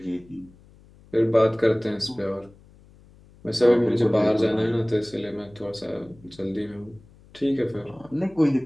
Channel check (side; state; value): left; noise; hum, 26 dB below the sound